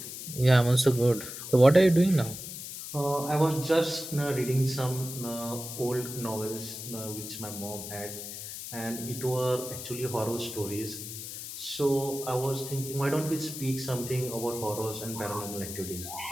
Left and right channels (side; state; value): left; noise; hiss, 9 dB below the sound